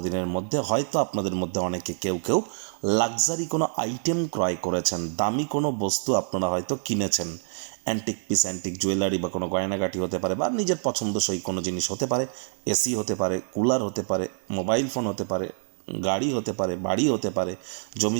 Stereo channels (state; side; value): silent; left; digital silence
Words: দিনের মধ্যে হয়তো আপনাদের মধ্যে অনেকে কেউ লাক্সারি কোনো আইটেম ক্রয় করেছেন, দামি কোনো বস্তু আপনারা হয়তো কিনেছেন। অ্যান্টিক পিস, অ্যান্টিক জুয়েলারি বা কোনো গয়নাগাটি হতে পারে, বা নিজের পছন্দসই কোনো জিনিস হতে পারে। এসি হতে পারে, কুলার হতে পারে, মোবাইল ফোন হতে পারে, গাড়ি হতে পারে, বাড়ি হতে পারে, জমি